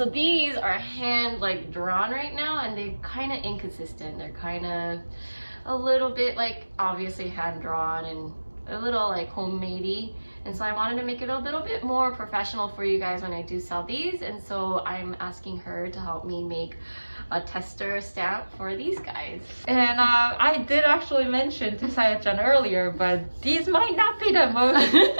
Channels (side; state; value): both; inverted; correlation -1.00